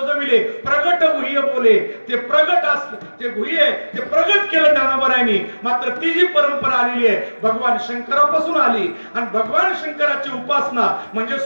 प्रगट गुह्य बोले. ते प्रगट ते गुह्य ते प्रगट केलं ज्ञानोबरायांनी. मात्र ती जी परंपरा आलेली आहे भगवान शंकरापासून आली. आणि भगवान शंकराची उपासना म्हणजे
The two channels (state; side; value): inverted; both; correlation -1.00